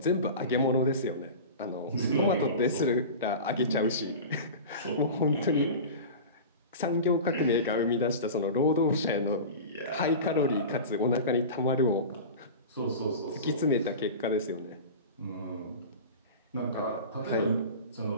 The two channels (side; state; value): both; inverted; correlation -0.32